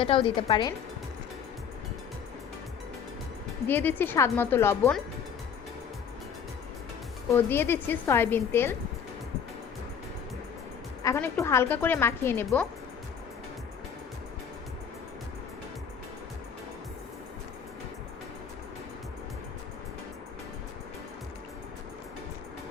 দিতে পারেন। দিয়ে দিচ্ছি স্বাদমতো লবণ ও দিয়ে দিচ্ছি সয়াবিন তেল। এখন একটু হালকা করে মাখিয়ে নেব।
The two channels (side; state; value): right; quieter; 7.3 dB